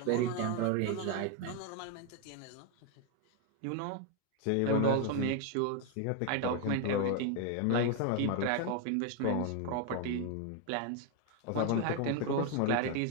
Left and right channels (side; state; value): both; different; correlation 0.00